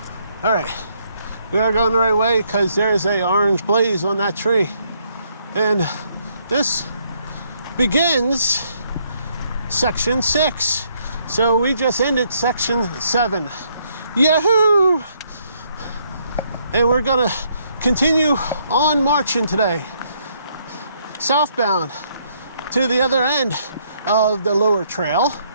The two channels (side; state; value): both; inverted; correlation -0.71